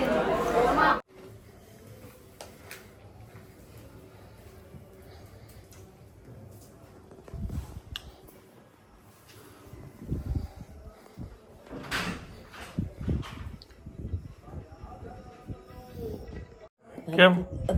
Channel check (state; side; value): identical; both; correlation 1.00